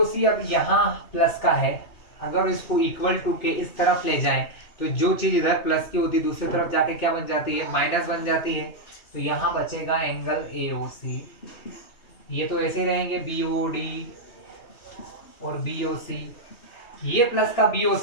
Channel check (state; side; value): late; right; 2.8 ms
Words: अब यहाँ प्लस का है, अगर इसको इक्वल टू के इस तरफ ले जाएं तो जो चीज इधर प्लस की होती दूसरी तरफ जाके क्या बन जाती है, माइनस बन जाती है। तो यहाँ बचेगा एंगल AOC। ये तो ऐसे ही रहेंगे BOD और BOC। ये प्लस का